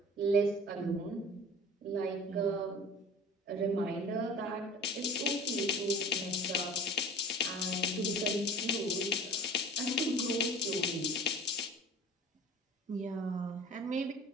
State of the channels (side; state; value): both; normal; correlation 0.41